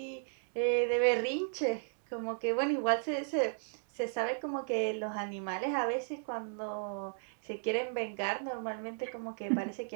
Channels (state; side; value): silent; left; digital silence